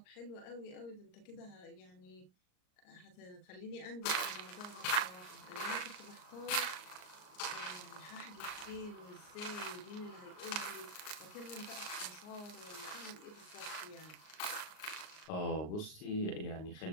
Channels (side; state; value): right; late; 38 ms